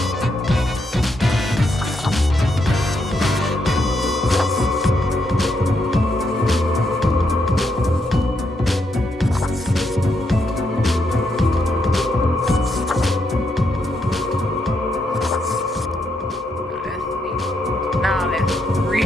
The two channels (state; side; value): normal; both; correlation 0.79